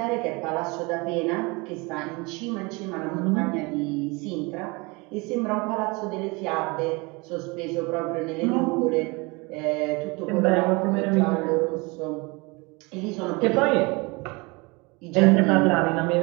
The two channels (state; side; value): quieter; left; 26.7 dB